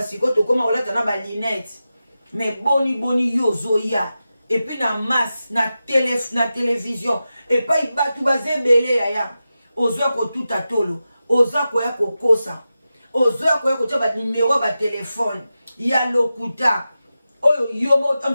to koma olata na ba lunette mais boni yo zoya et puis na masse na télévision et pas batu bazebele yaya ozwa ko tuta tolo oza ko ya kokosa ozoya ko ya ko tia ba numéro ba téléphone ya lokuta oyo yomo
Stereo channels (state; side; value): inverted; both; correlation -0.92